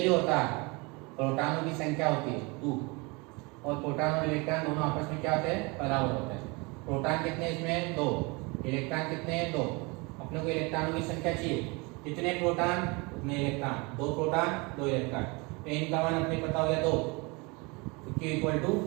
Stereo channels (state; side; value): quieter; left; 27.7 dB